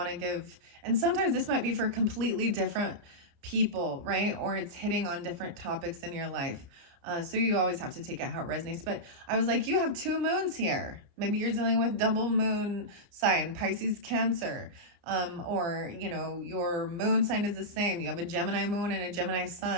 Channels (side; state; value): left; late; 29 ms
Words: to give, and sometimes this might be for completely different people, right? Or it's hitting on different topics in your life. So you always have to take it how it resonates. But I was like, you have 2 moons here. Maybe you're dealing with double moon sign, Pisces, Cancer. Or, your moon sign is the same. You have a Gemini moon and a Gemini